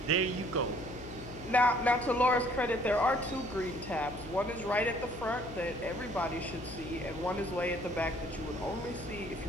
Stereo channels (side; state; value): left; noise; hum, 15 dB below the sound